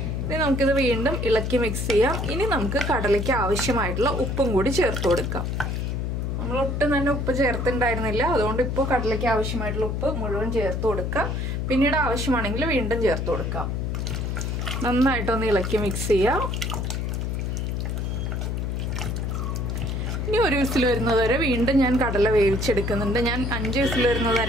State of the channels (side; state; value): left; noise; hum, 1 dB below the sound